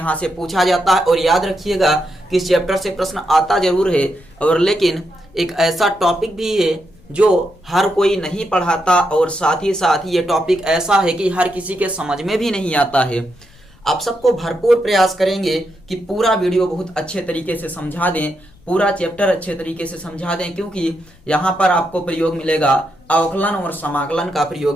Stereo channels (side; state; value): left; noise; rumble, 27 dB below the sound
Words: से पूछा जाता है। और याद रखिएगा कि इस चैप्टर से प्रश्न आता जरूर है, और लेकिन एक ऐसा टॉपिक भी है जो हर कोई नहीं पढ़ाता, और साथ ही ये टॉपिक ऐसा है कि हर किसी के समझ में भी नहीं आता है। आप सबको भरपूर प्रयास करेंगे कि पूरा वीडियो बहुत अच्छे तरीके से समझा दें, पूरा चैप्टर अच्छे तरीके से समझा दें, क्योंकि यहाँ पर आपको प्रयोग मिलेगा, अवकलन और समाकलन का